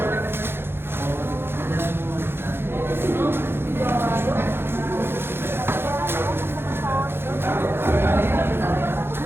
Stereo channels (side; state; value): left; late; 0.11 ms